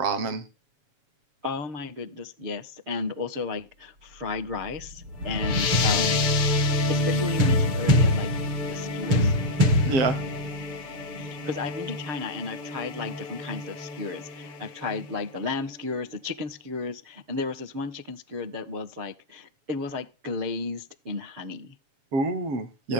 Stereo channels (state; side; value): late; left; 7.2 ms